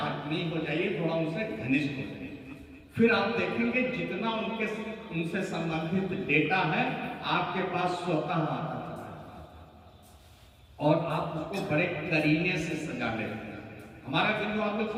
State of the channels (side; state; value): both; identical; correlation 1.00